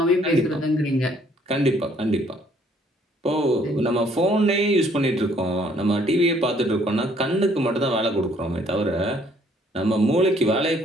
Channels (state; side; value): normal; both; correlation 0.63